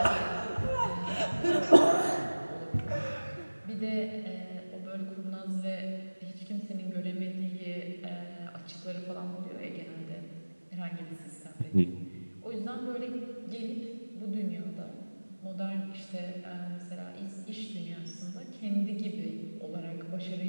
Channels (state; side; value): inverted; both; correlation -1.00